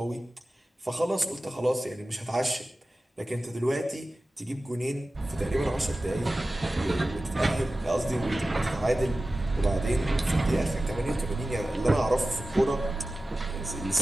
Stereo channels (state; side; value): normal; both; correlation 0.95